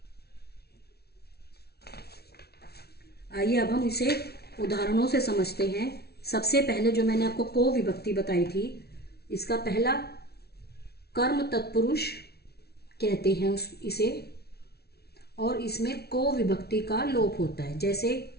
आइए अब हम इसे उदाहरणों से समझते हैं। सबसे पहले जो मैंने आपको को विभक्ति बताई थी, इसका पहला कर्म तत्पुरुष कहते हैं इसे, और इसमें को विभक्ति का लोप होता है। जैसे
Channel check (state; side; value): late; right; 0.46 ms